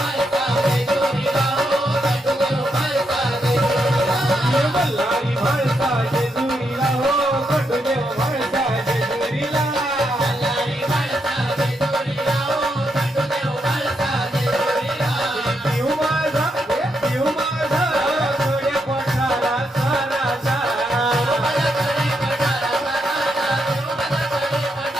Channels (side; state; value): both; normal; correlation 0.81